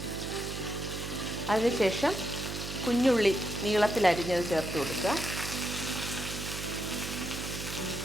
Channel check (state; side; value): noise; right; hum, 7 dB below the sound